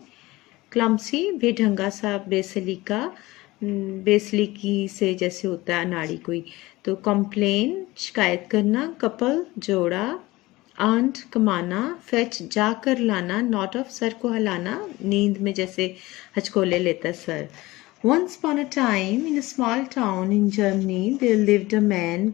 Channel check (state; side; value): quieter; right; 19.8 dB